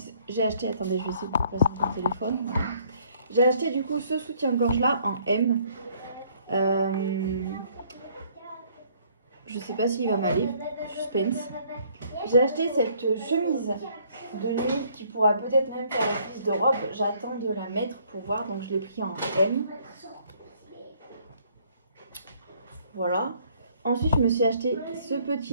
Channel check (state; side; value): inverted; both; correlation -0.63